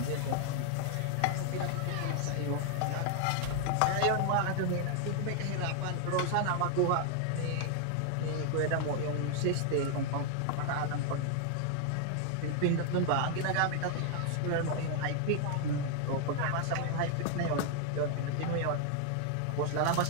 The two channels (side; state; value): both; different; correlation 0.00